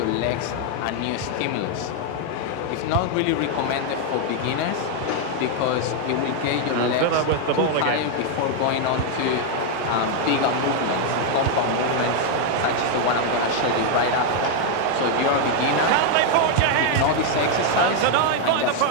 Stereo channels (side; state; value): both; different; correlation 0.00